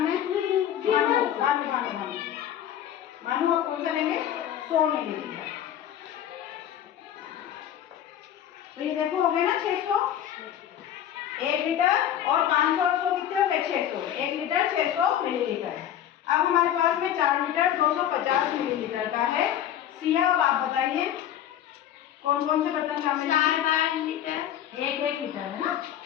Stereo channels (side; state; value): right; quieter; 10.7 dB